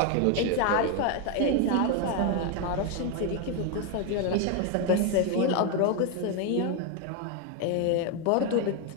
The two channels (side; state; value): both; different; correlation 0.01